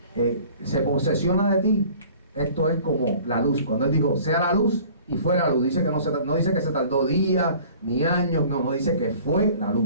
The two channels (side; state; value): both; inverted; correlation -0.49